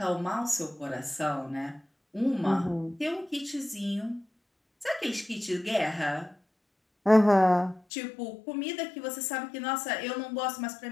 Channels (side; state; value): right; drops out; at 7.8 s